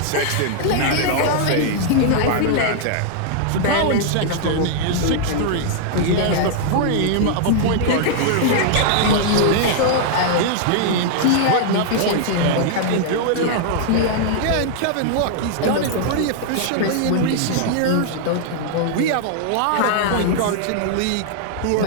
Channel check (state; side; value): different; both; correlation -0.01